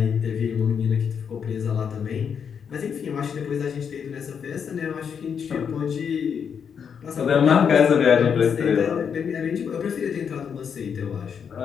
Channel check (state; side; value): quieter; right; 7.1 dB